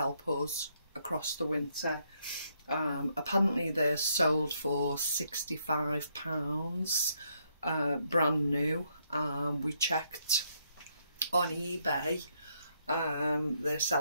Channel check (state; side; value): inverted; both; correlation -0.74